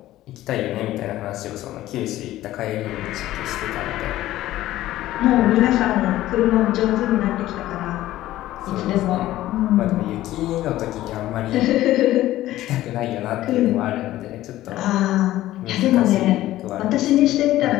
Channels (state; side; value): quieter; right; 14.9 dB